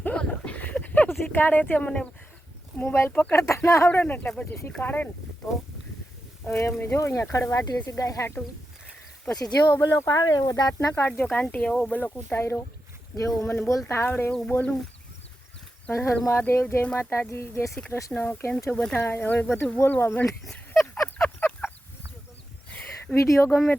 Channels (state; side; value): normal; both; correlation 0.89